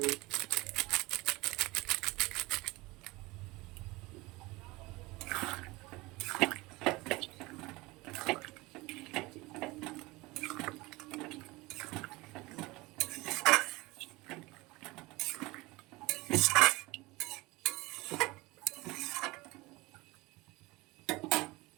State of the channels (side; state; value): left; quieter; 21.9 dB